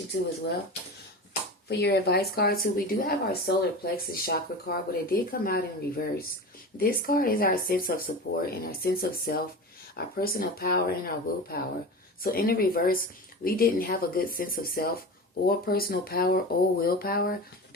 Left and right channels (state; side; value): normal; both; correlation 0.30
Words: too as well. For your advice card too, we do have our solar plexus chakra card, but it did come out in reverse. This card is our sense of support and our sense of self, our personal power and our willpower. So in the reverse, we didn't have a good sense of self or personal power or willpower